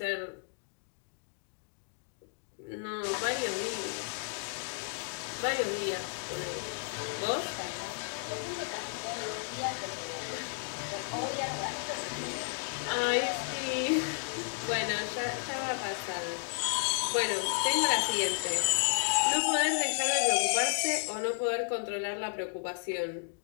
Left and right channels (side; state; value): right; silent; digital silence